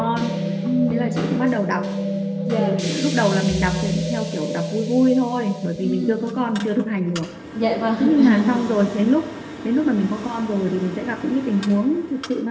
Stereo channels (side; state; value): both; identical; correlation 1.00